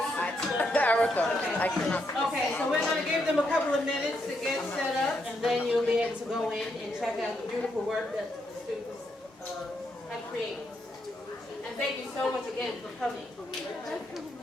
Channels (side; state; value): both; normal; correlation 0.78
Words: Erica, I cannot. Okay, so we're going to give them a couple of minutes to get set up, and then you'll be able to go in and check out the beautiful work that the students have created. And thank you so much again for coming.